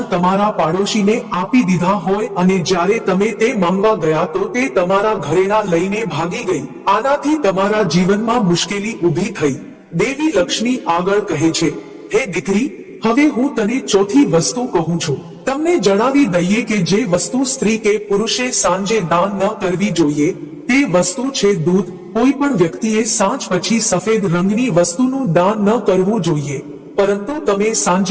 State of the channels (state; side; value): identical; both; correlation 1.00